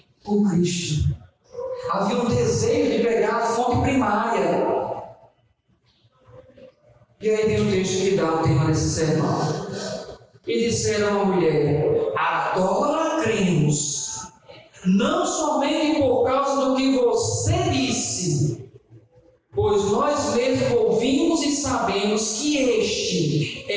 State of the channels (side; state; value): both; identical; correlation 1.00